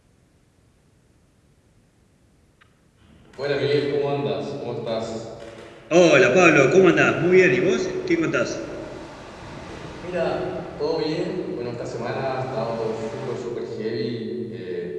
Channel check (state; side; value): identical; both; correlation 1.00